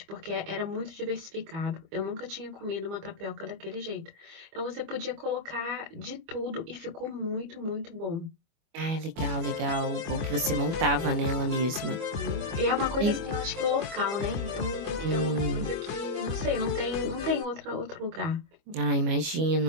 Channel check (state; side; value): late; left; 25 ms